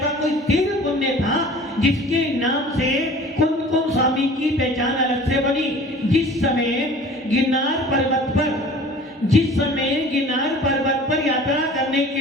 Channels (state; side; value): normal; both; correlation 0.45